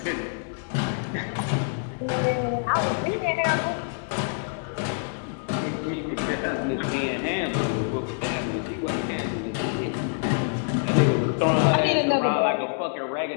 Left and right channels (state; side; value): silent; right; digital silence